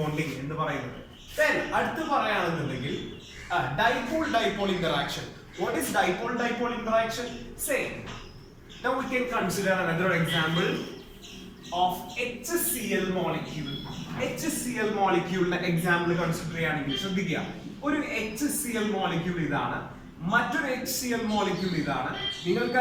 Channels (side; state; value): both; identical; correlation 1.00